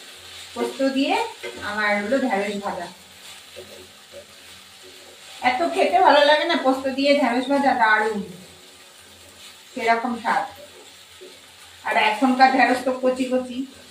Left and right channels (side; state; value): both; identical; correlation 1.00